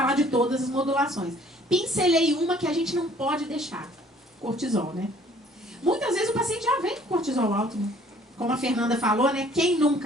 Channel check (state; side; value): normal; both; correlation 0.57